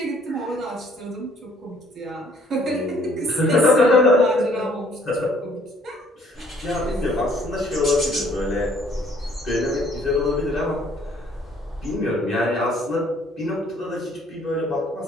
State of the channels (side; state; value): both; normal; correlation 0.61